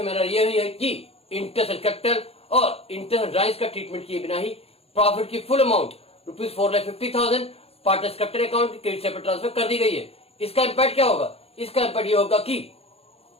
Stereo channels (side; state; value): right; late; 0.29 ms